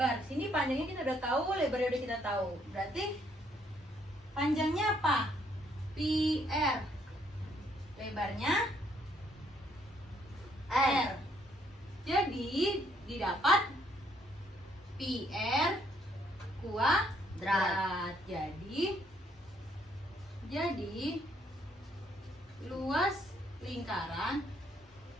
Sini panjangnya kita udah tahu, lebarnya udah kita tahu. Berarti panjangnya apa? Pi R. Lebarnya R. Jadi didapat pi R kuadrat. Jadi luas lingkaran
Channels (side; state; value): both; normal; correlation 0.69